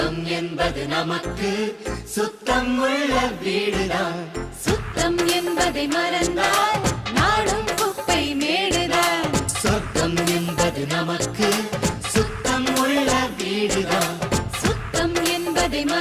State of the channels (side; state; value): both; identical; correlation 1.00